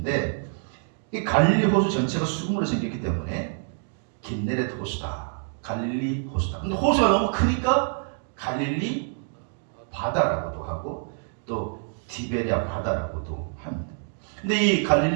이 갈릴리 호수 전체가 수금으로 생겼기 때문에 긴네렛 호수다. 갈릴리 호수다. 근데 호수가 너무 크니까 갈릴리 바다라고도 하고 또 티베리아 바다라고도 합니다. 근데 이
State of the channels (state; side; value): silent; left; 61 dB below the other